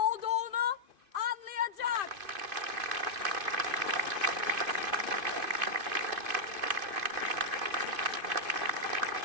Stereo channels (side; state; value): left; late; 2.5 ms